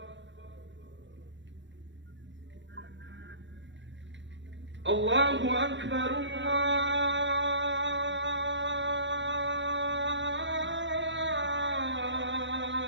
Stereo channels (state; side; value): late; left; 0.54 ms